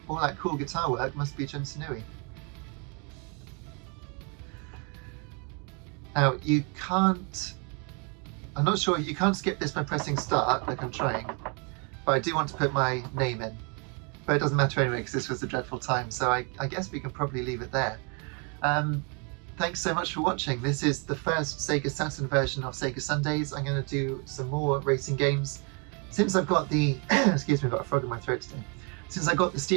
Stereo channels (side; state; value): left; quieter; 34.6 dB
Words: all that cool guitar work must be Jun Sanui. Now you can't, I'm not sure, you can't skip this by pressing start like I'm trying, but I do want to put my name in. But it doesn't matter anyway because this was a dreadful time, so I guess we can probably leave it there. Thanks so much for watching. This is the first Sega Saturn version of Sega Sundays. I'm going to do some more racing games. Since I've got the, excuse me, I've got a frog in my throat today. Since I got the